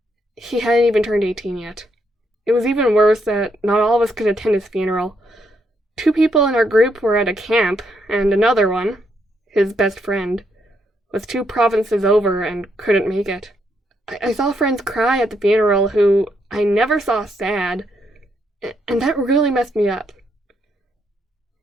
He hadn't even turned 18 yet. It was even worse that not all of us could attend his funeral. 2 people in our group were at a camp, and another one, his best friend, was 2 provinces over and couldn't make it. I saw friends cry at the funeral who I never saw sad, and that really messed me up.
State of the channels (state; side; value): normal; both; correlation 0.76